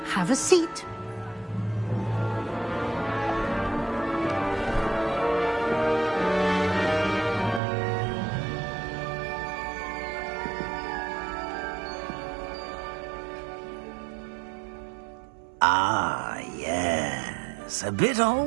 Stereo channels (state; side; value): drops out; left; at 7.6 s